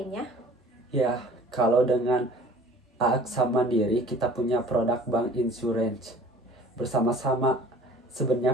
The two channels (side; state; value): both; normal; correlation 0.48